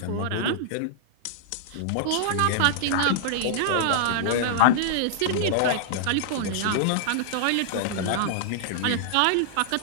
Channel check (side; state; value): both; different; correlation -0.01